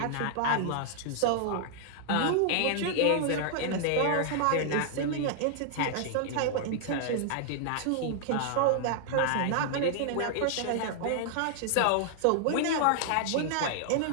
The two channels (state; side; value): different; both; correlation -0.01